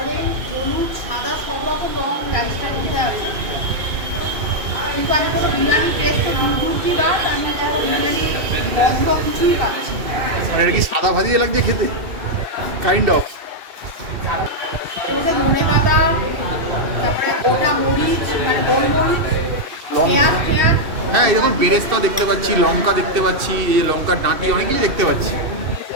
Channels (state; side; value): late; left; 2.6 ms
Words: হলুদ, সাদা, সব রকম রং রাইসটার মধ্যে আছে। কিন্তু আমি কোনো বিরিয়ানি টেস্ট তো দূর কি বা আমি কোনো বিরিয়ানি গন্ধ কিছুই পাচ্ছি না। মানে এটা কি সাদা ভাজিয়ে লাগছে খেতে, কাইন্ড অফ। এর মধ্যে ধনে পাতা, তারপরে গোটা মরিচ, মানে গোলমরিচ, পেঁয়াজ পেঁয়াজ। হ্যাঁ, এই দেখুন বেরেস্তা দেখতে পাচ্ছি, লঙ্কা দেখতে পাচ্ছি, এই লঙ্কার ডাঁটি, অনেক কিছু দেখতে পাচ্ছি।